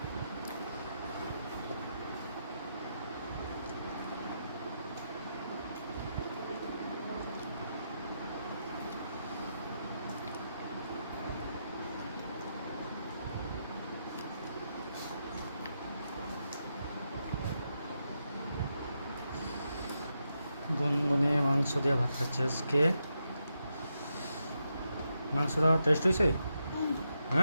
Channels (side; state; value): both; inverted; correlation -0.84